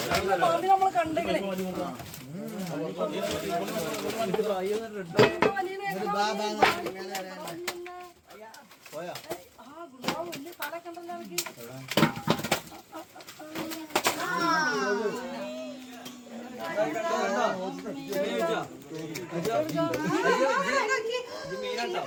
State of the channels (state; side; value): identical; both; correlation 1.00